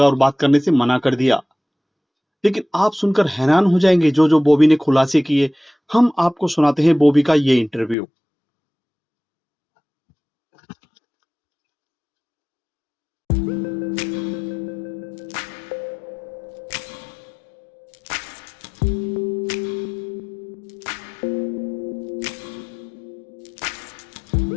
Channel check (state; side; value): drops out; right; at 8.0 s